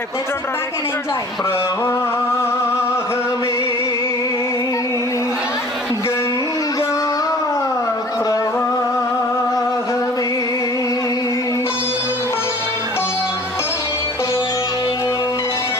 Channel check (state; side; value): normal; both; correlation 0.47